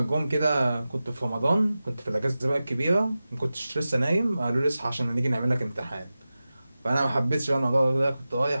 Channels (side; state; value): both; inverted; correlation -0.95